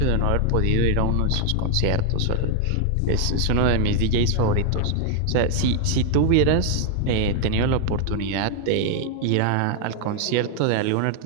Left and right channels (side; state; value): both; different; correlation 0.00